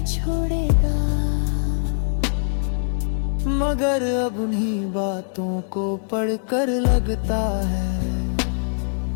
छोड़ेगा। मगर अब उन्हीं बातों को पढ़कर लगता है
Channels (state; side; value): silent; right; digital silence